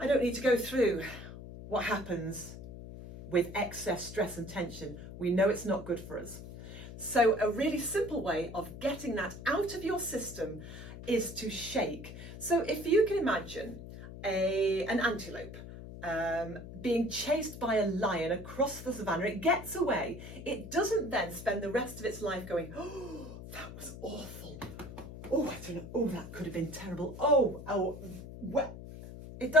don't need to go through what happens with excess stress and tension. We know it's not good for us. So a really simple way of getting that out of your system is to shake. So if you can imagine an antelope being chased by a lion across the savannah, it gets away. It doesn't then spend the rest of its life going, oh, that was awful. Oh, I don't know. Oh, that could have been terrible. Well, it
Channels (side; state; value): left; noise; hum, 12 dB below the sound